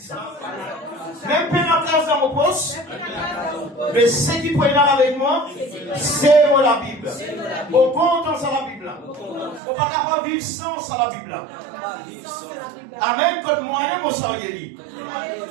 Même pas la classe dans mon poste, mais ce qui peut être avec moi, c'est moi la Bible. Au compte dans la Bible. On ne peut pas vivre sans la Bible. Amen. Quand moi-même, on s'en dit.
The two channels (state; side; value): drops out; left; at 9.6 s